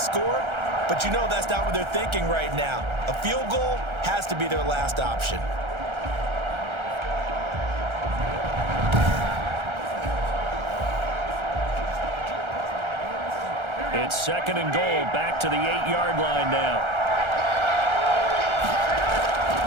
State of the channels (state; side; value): late; left; 1.3 ms